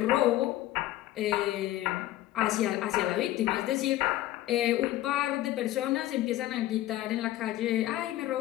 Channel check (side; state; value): right; quieter; 15.1 dB